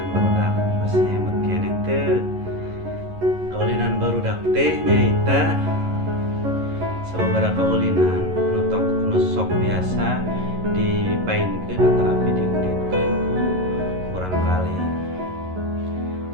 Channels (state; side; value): late; left; 11 ms